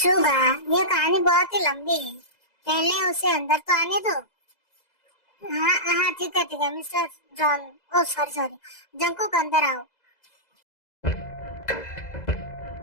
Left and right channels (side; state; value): right; late; 2.0 ms